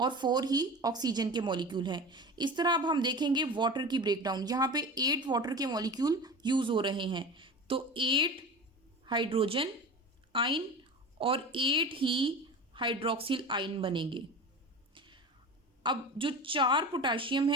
4 ही ऑक्सीजन के मॉलिक्यूल हैं। इस तरह अब हम देखेंगे वाटर की ब्रेकडाउन। यहाँ पे 8 वाटर के मॉलिक्यूल यूज हो रहे हैं तो 8 हाइड्रोजन आयन और 8 ही हाइड्रोक्सिल आयन बनेंगे। अब जो 4 पोटाशियम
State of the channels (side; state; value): both; normal; correlation 0.32